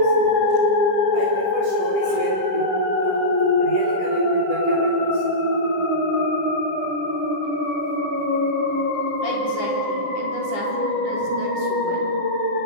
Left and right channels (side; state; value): left; late; 10 ms